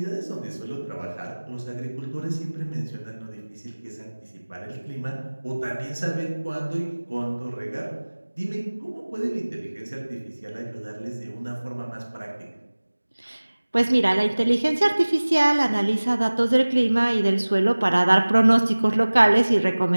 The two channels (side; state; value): both; inverted; correlation -1.00